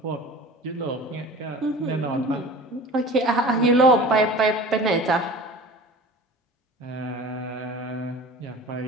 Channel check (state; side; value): normal; both; correlation 0.39